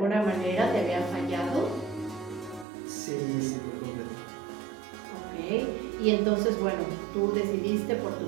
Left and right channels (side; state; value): left; drops out; at 2.7 s